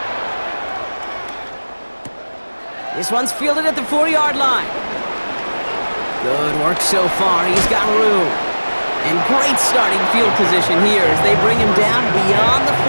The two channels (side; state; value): both; inverted; correlation -1.00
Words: This one's fielded at the 4-yard line. Good work so far. He's got room. And great starting field position here as they bring him down beyond the